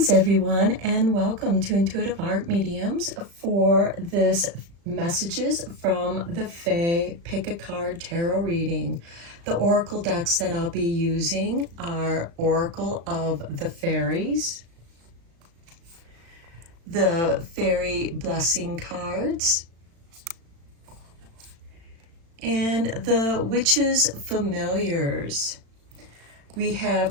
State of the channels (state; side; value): late; left; 35 ms